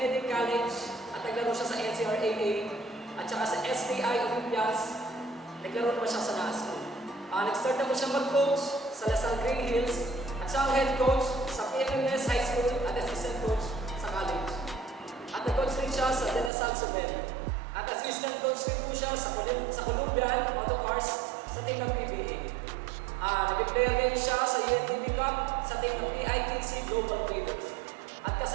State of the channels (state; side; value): drops out; left; at 16.5 s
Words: College at naglaro siya sa NCRAA at saka sa STI Olympias. Naglaro naman siya sa NASCO. Nag-start naman siya mag-coach sa Lasal Green Hills at siya ang head coach sa PMMS High School at assistant coach sa college. At nag-coach rin siya sa De La Salle Subel. At assistant coach rin po siya sa Columbian Autocars sa team ng PBA. Nag-player rin siya sa UNTV Cup sa team ng PITC Global Traders. At